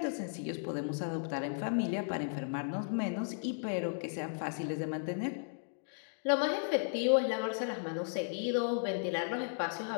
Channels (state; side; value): silent; right; digital silence